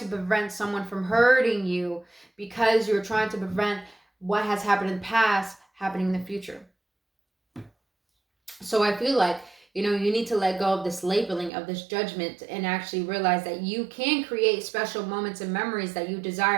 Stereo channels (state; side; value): drops out; left; at 11.5 s